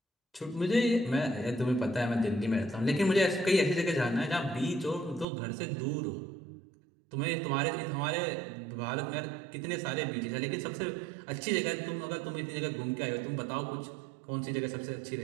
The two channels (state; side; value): drops out; left; at 5.2 s